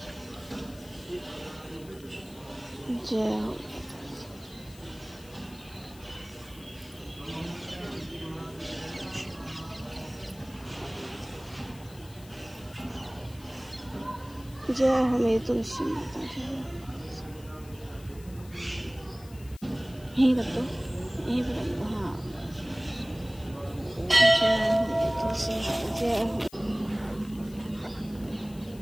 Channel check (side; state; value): left; noise; hiss, 22 dB below the sound